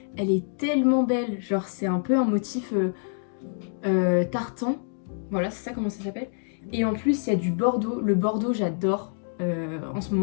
Elle est tellement belle, genre c'est un peu un motif tartan. Voilà, c'est ça comment ça s'appelle. Et en plus, il y a du bordeaux. Le bordeaux, j'adore. en ce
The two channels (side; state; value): right; silent; digital silence